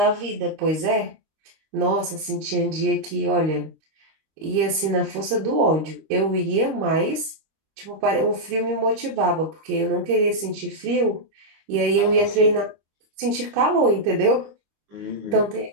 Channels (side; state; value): left; late; 26 ms